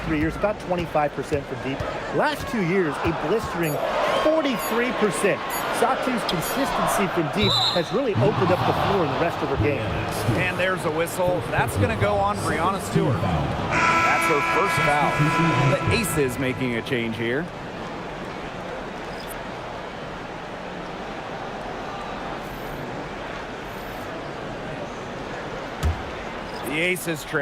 3 years, about 25% from deep. Last 2 years, a blistering 43%. Satu's consistency from deep has really opened up the floor in the rest of her game. And there's a whistle. That's going to go on Breonna Stewart. That's her first foul. The Aces making a change here. The Aces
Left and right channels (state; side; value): identical; both; correlation 1.00